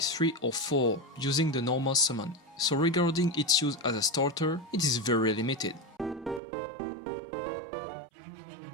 3 or 4 using the normal summon. So regarding its use as a starter, it is very limited.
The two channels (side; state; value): left; drops out; at 6.4 s